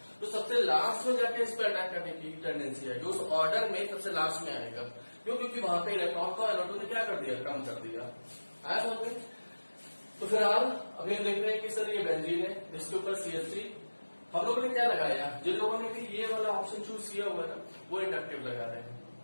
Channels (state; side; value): inverted; both; correlation -1.00